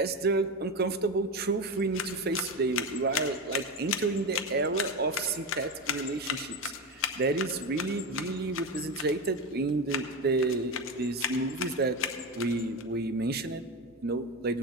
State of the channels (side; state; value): both; normal; correlation 0.19